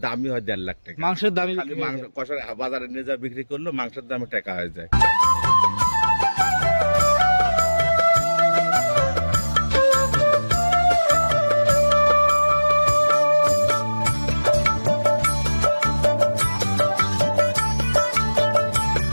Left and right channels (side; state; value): both; inverted; correlation -1.00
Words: দামই হয় 1.5 লাখ টাকা। মাংসের দামই খালি মাংস কষার বাজারে নিয়ে যা বিক্রি করলো, মাংসের দামে টাকা হয়ে যায়।